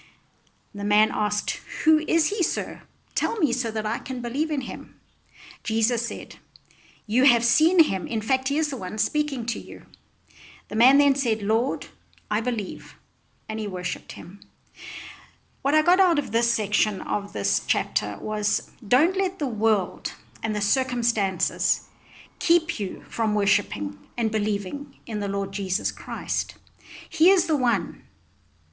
The man asked, who is he, sir? Tell me so that I can believe in him. Jesus said, you have seen him. In fact, he is the one speaking to you. The man then said, Lord, I believe. And he worshipped him. What I got out of this section of this chapter was, don't let the world and the circumstances keep you from worshipping and believing in the Lord Jesus Christ. He is the one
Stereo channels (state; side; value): identical; both; correlation 1.00